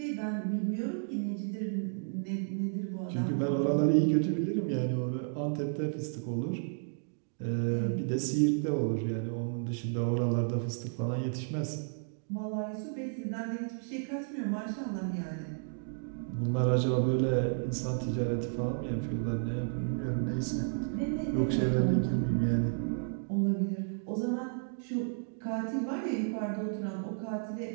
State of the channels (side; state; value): left; silent; digital silence